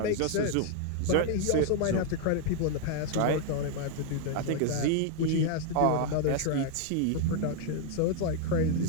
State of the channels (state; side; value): different; both; correlation 0.00